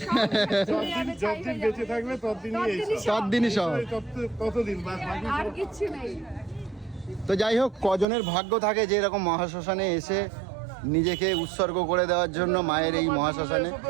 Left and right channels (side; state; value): left; drops out; at 8.1 s